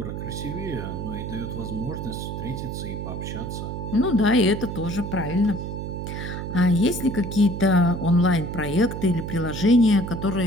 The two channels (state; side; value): noise; right; hum, 6 dB below the sound